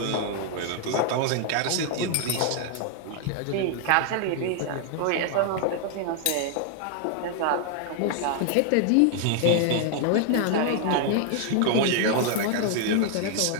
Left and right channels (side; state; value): both; different; correlation 0.00